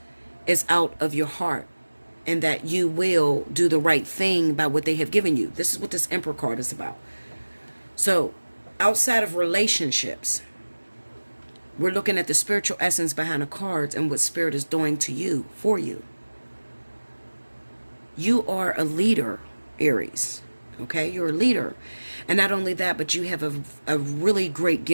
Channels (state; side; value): inverted; both; correlation -1.00